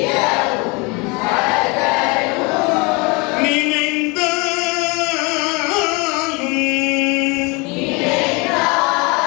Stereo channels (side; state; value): right; quieter; 28.2 dB